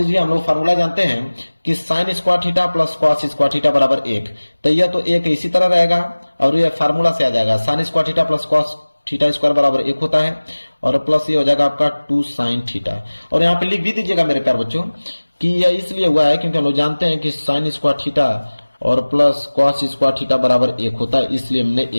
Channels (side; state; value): both; inverted; correlation -1.00